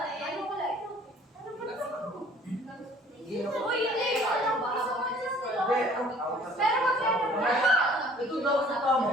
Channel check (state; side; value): normal; both; correlation 0.54